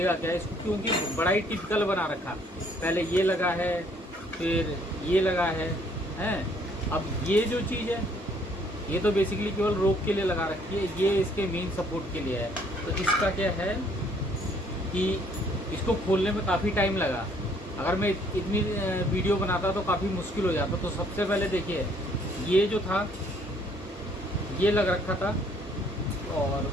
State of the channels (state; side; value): normal; both; correlation 0.63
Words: क्या इसको, क्योंकि बड़ा ही टिपिकल बना रखा। पहले ये लगा है, फिर ये लगा है, हैं। अब ये जो चीज़ है ये तो बेसिकली केवल रोक के लिए लगा रखी है, ये इसके मेन सपोर्ट के लिए है। तो इसका क्या है कि इसको खोलने में काफ़ी टाइम लगा। अगर मैं इतनी वीडियो बनाता तो काफ़ी मुश्किल हो जाता। तो सबसे पहले देखिए ये जो था ये लग रखा था, और